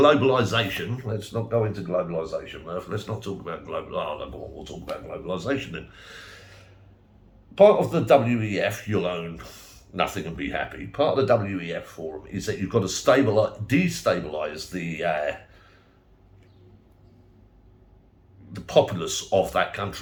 let's not go into globalisation, Murph. Let's not talk about we'll talk about globalisation then. Part of the WEF, you'll own nothing and be happy. Part of the WEF forum is that you've got to destabilise the populace of that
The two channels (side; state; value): both; identical; correlation 1.00